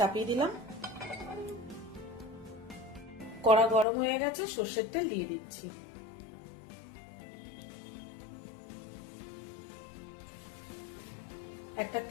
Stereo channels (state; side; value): drops out; right; at 3.9 s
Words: দিলাম, কড়া গরম হয়ে গেছে, সর্ষের তেল দিয়ে দিচ্ছি। একটা